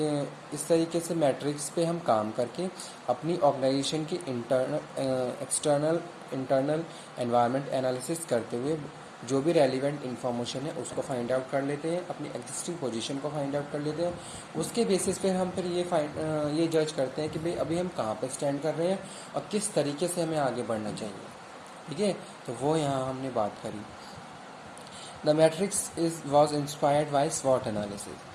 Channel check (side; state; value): both; identical; correlation 1.00